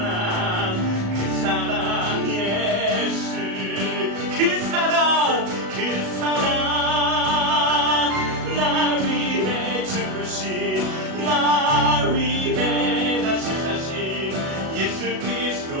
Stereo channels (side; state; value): left; late; 37 ms